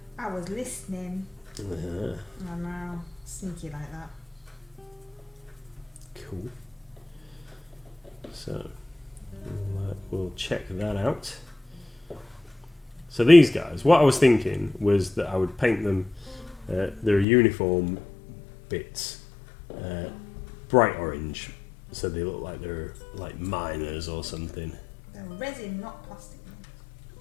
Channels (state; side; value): drops out; right; at 17.2 s